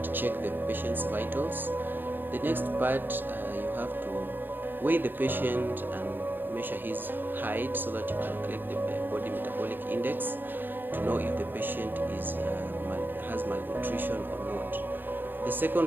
check the patient's vitals. The next part, you have to weigh the patient and measure his height so that you calculate the body metabolic index to know if the patient has malnutrition or not. The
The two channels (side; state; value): left; late; 0.094 ms